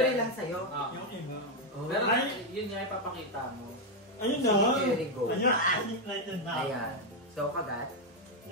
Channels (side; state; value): both; normal; correlation 0.03